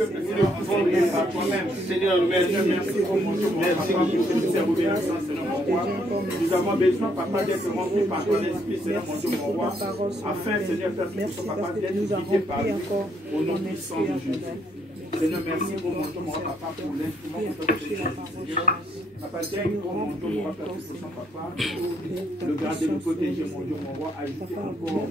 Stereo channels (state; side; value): normal; both; correlation 0.71